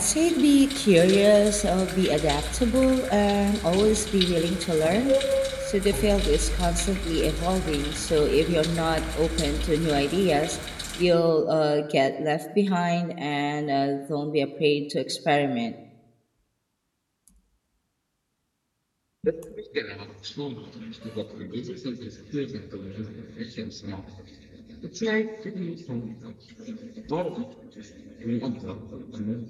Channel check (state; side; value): identical; both; correlation 1.00